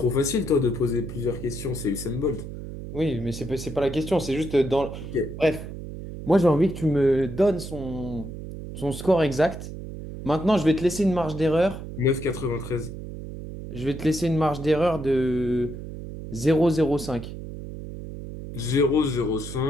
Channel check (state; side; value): noise; right; hum, 10 dB below the sound